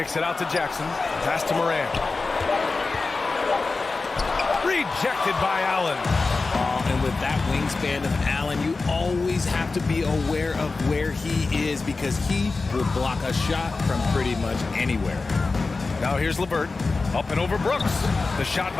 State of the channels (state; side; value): quieter; right; 3.9 dB